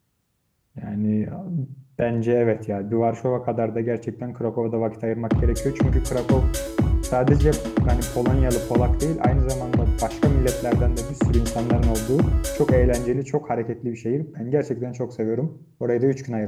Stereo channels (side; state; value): both; identical; correlation 1.00